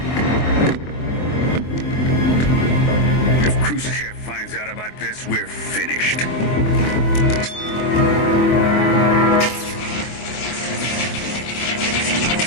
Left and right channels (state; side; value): late; right; 24 ms